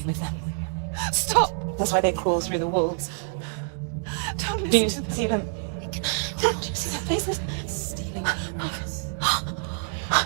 with them. Stop! That's why they crawl through the walls. Don't listen. Do you see them? Do you see their faces?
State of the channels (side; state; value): left; silent; 61 dB below the other